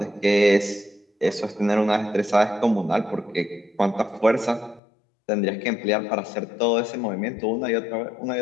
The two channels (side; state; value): right; drops out; at 4.8 s